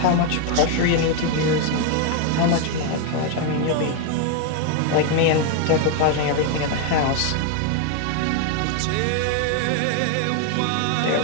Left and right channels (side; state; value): both; different; correlation 0.01